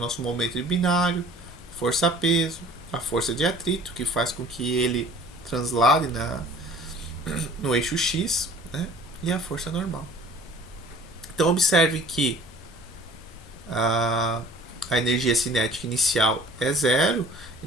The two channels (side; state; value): both; normal; correlation 0.49